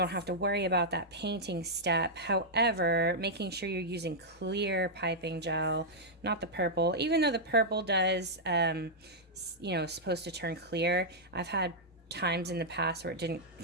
have to worry about that painting step. However, making sure you're using clear piping gel, not the purple. Even though the purple does, you know, supposed to turn clear, I've had times in the past where it didn't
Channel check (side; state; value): both; normal; correlation -0.07